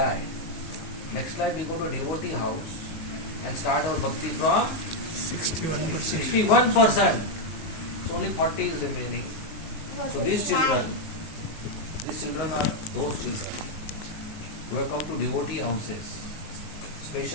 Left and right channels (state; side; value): late; right; 19 ms